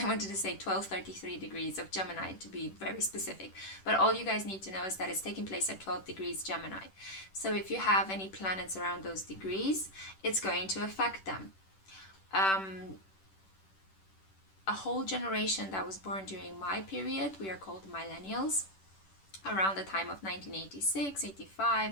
wanted to say 1233 degrees of Gemini to be very specific, but all you guys need to know is that it's taking place at 12 degrees Gemini. So if you have any planets around those degrees, it's going to affect them. A whole generation that was born during my period, we are called millennials, around the time of 1986,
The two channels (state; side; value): late; right; 10 ms